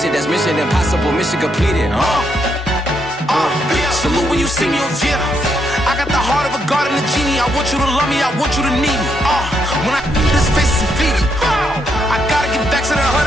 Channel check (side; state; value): both; normal; correlation 0.78